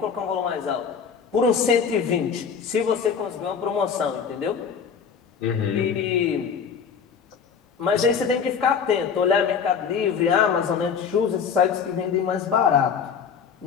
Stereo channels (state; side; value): quieter; right; 6.7 dB